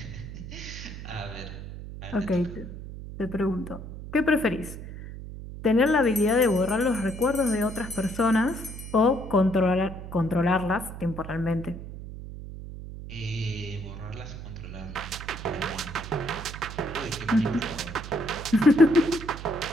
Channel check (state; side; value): noise; right; hum, 11 dB below the sound